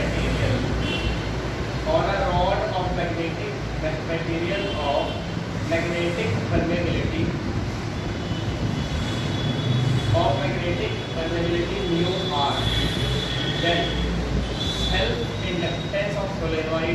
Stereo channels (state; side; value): identical; both; correlation 1.00